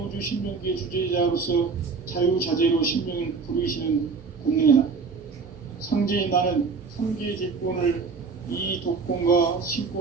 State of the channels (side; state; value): left; quieter; 4.9 dB